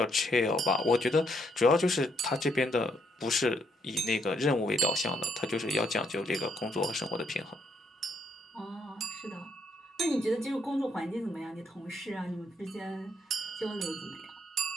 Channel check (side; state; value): both; normal; correlation 0.73